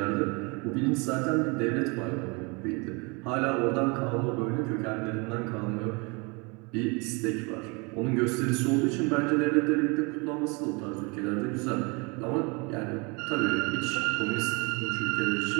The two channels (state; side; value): quieter; left; 29.7 dB